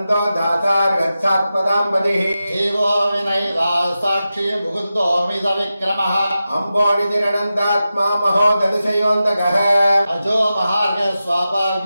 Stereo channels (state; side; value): inverted; both; correlation -0.92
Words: दासार्गच्छात्पदाम्बदिः जीवो विनयिता साक्षी मुकुन्दोऽमित विक्रमः अम्बोनिधिरनन्दात्मा महोदधिशयोऽन्तकः अजो महार्घ